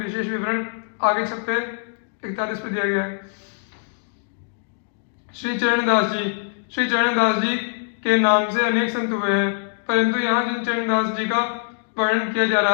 विवरण आगे छप्पे 41 पर दिया गया है। श्री चरणदास जी, श्री चरणदास जी के नाम से अनेक संत हुए हैं, परंतु यहाँ जिन चरणदास जी का वर्णन किया जा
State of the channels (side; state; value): right; silent; digital silence